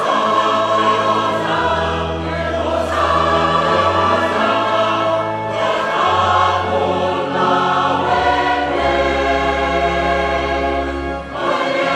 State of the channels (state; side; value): identical; both; correlation 1.00